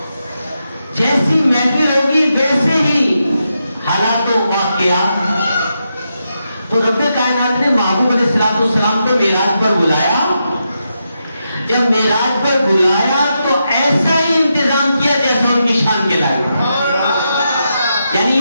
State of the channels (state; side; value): inverted; both; correlation -0.85